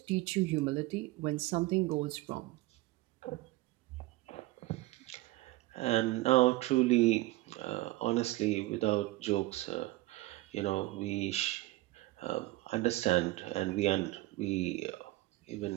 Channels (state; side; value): quieter; left; 18.8 dB